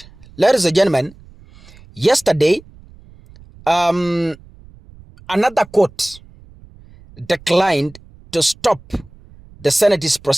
Ladies and gentlemen, yesterday, another court declined to stop the Senate's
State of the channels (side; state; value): right; noise; rumble, 24 dB below the sound